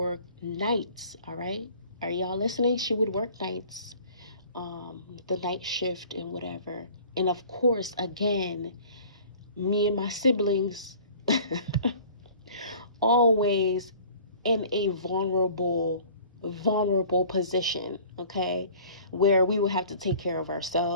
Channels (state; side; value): inverted; both; correlation -0.48